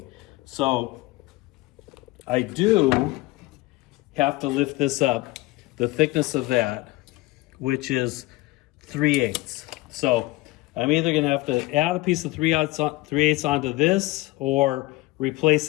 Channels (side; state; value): right; quieter; 20.4 dB